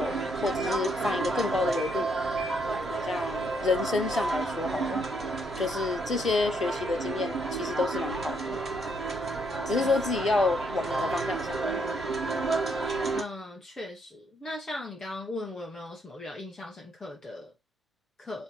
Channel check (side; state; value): both; normal; correlation 0.72